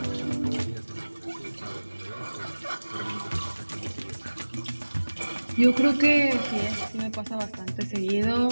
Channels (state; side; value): inverted; both; correlation -1.00